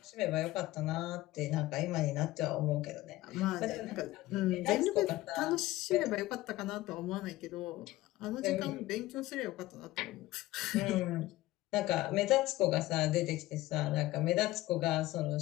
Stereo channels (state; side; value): quieter; right; 17.4 dB